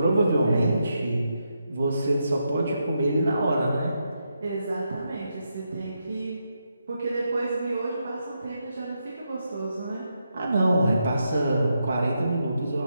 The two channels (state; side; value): inverted; both; correlation -0.83